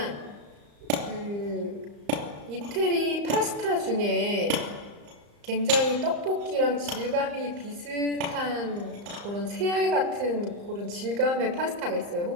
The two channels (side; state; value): left; late; 34 ms